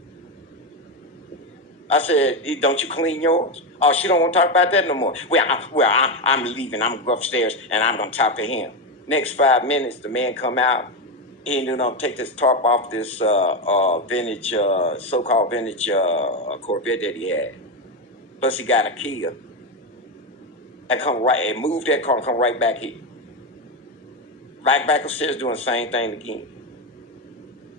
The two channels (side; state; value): both; normal; correlation 0.11